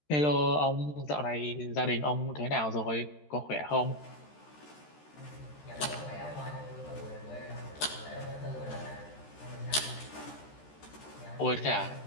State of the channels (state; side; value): late; right; 13 ms